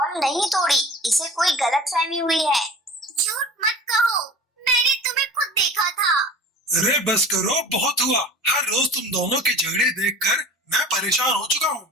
नहीं तोड़ी, इसे कोई गलतफहमी हुई है। झूठ मत कहो, मैंने तुम्हें खुद देखा था। अरे बस करो, बहुत हुआ। हर रोज तुम दोनों के झगड़े देखकर मैं परेशान हो चुका हूँ,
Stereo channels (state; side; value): normal; both; correlation 0.39